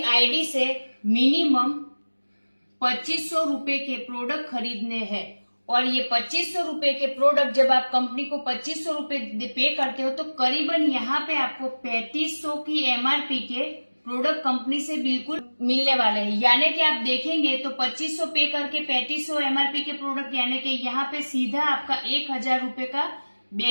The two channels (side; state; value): both; inverted; correlation -1.00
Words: आईडी से मिनिमम 2500 रुपए के प्रोडक्ट खरीदने हैं और ये 2500 रुपए के प्रोडक्ट जब आप कंपनी को 2500 रुपए पे करते हो तो करीबन यहाँ पे आपको 3500 की एमआरपी के प्रोडक्ट कंपनी से बिल्कुल मिलने वाले हैं। यानी कि आप देखेंगे तो 2500 पे करके 3500 एमआरपी के प्रोडक्ट यानी कि यहाँ पे सीधा आपका 1000 रुपए का